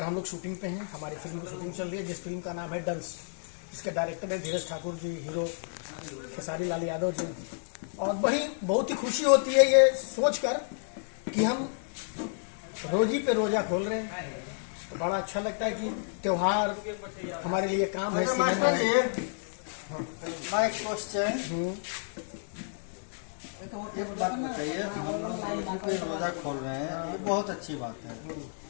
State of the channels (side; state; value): right; silent; digital silence